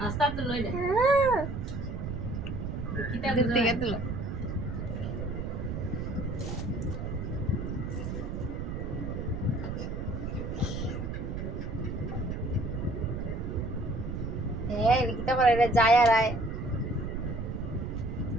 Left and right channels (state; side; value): noise; right; rumble, 4 dB below the sound